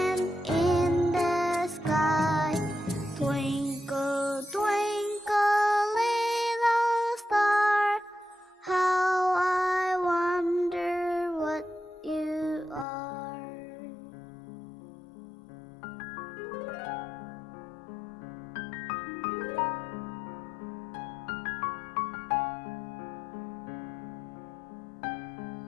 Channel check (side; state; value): right; drops out; at 12.9 s